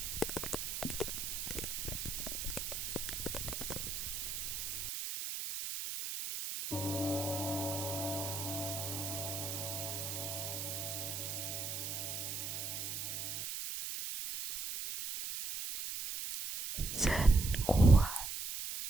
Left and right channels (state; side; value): noise; right; hiss, 4 dB below the sound